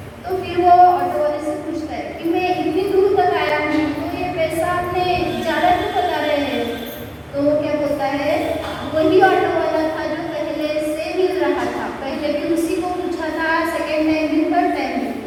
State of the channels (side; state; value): both; identical; correlation 1.00